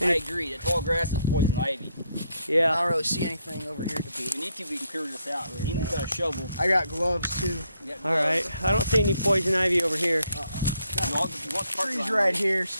I agree. That tall grass is poison ivy. I Yeah. don't really see anything over here to be. We need to. We can clear this out. Ian's got a shovel. I got gloves too. We got All right. I don't see any poison ivy over here. You want the property Trees line, right here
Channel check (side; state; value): both; inverted; correlation -0.75